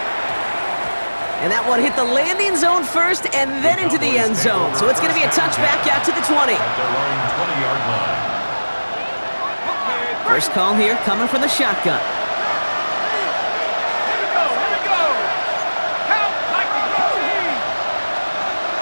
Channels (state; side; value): inverted; both; correlation -1.00